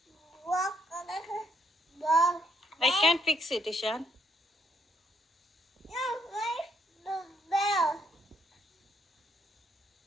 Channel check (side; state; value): both; normal; correlation 0.71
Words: rocket. I can't fix it, Ishan. No, where's the bell?